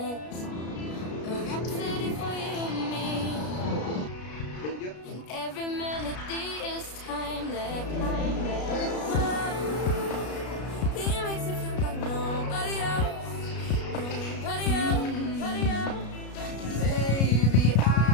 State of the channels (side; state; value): right; late; 33 ms